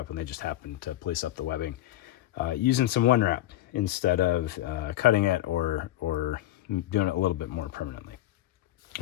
and they just happened to place up the webbing using some one wrap instead of cutting it or doing it a little bit more permanently.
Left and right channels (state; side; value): quieter; right; 14.4 dB